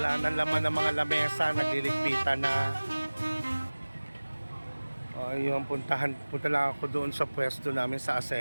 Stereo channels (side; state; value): both; inverted; correlation -1.00